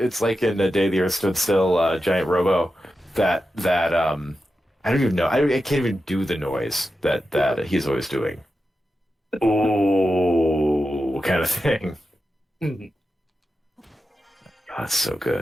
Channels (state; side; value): normal; both; correlation 0.90